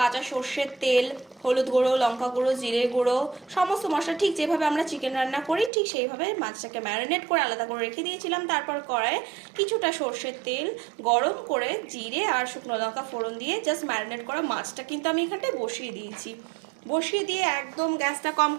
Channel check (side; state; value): left; drops out; at 5.7 s